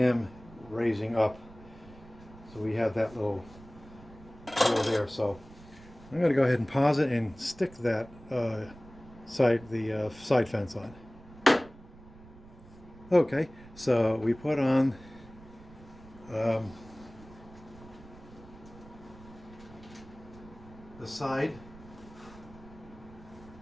raising up. So we have that little hole there. So I'm going to go ahead and pause it and stick that side fence on. Okay, so we put on the side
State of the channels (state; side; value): noise; right; rumble, 20 dB below the sound